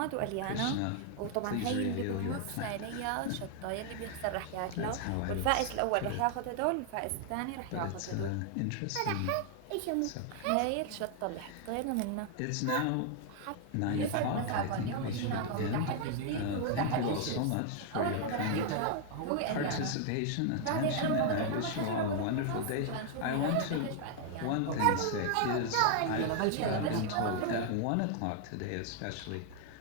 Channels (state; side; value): different; both; correlation 0.00